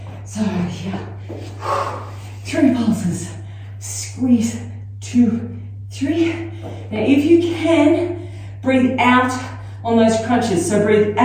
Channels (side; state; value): both; identical; correlation 1.00